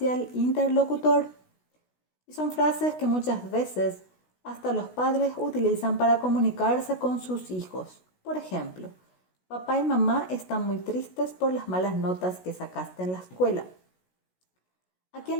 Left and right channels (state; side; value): late; right; 16 ms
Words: el interlocutor. Y son frases que muchas veces hasta los padres utilizan para comunicarse con sus hijos. Por ejemplo, papá y mamá están muy tristes por las malas notas que sacaste en la escuela. Aquí